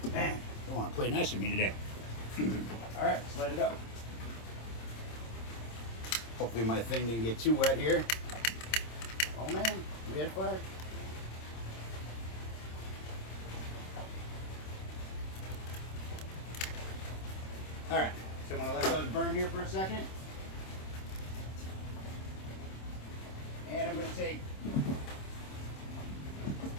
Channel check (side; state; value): right; late; 26 ms